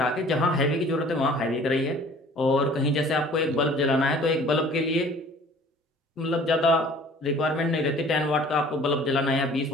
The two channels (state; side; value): normal; both; correlation 0.50